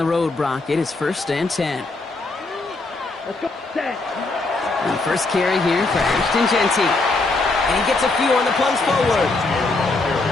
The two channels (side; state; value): right; quieter; 3.3 dB